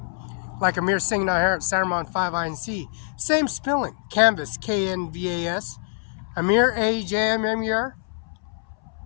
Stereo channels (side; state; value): right; silent; 62 dB below the other